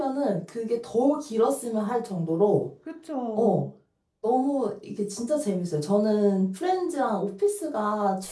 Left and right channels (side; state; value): both; identical; correlation 1.00